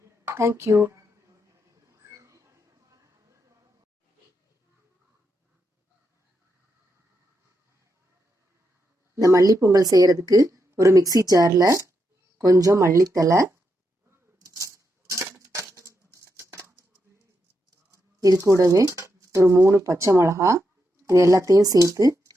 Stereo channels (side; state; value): both; normal; correlation 0.83